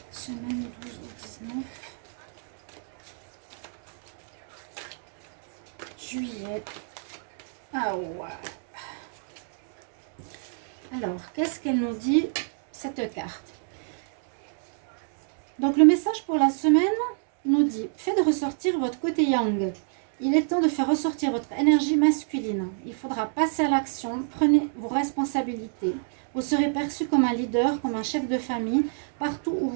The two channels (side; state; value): left; silent; 61 dB below the other